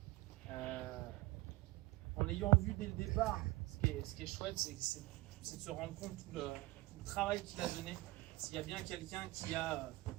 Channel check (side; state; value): left; quieter; 20.8 dB